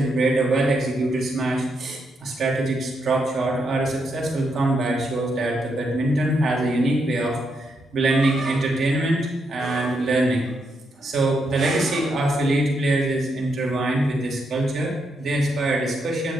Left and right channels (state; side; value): normal; both; correlation 0.80